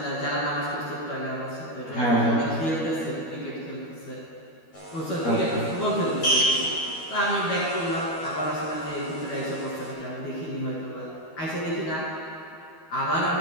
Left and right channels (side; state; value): right; late; 13 ms